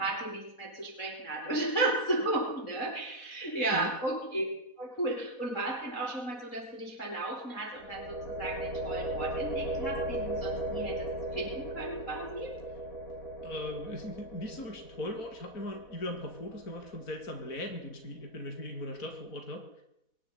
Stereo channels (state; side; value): late; right; 4.1 ms